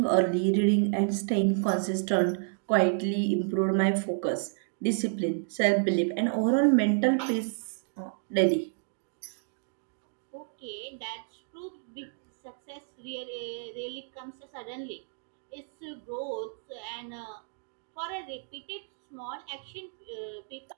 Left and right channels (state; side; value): silent; left; digital silence